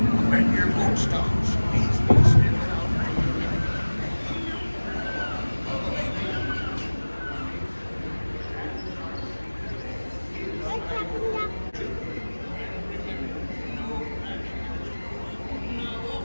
When your boat stops, please be still.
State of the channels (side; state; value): both; inverted; correlation -1.00